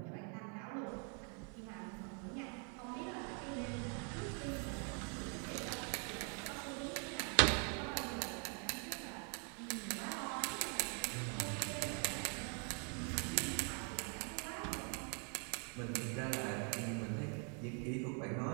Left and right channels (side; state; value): left; quieter; 39.5 dB